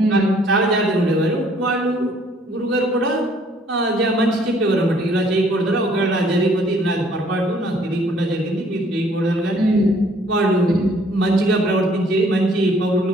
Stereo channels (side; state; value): both; normal; correlation 0.61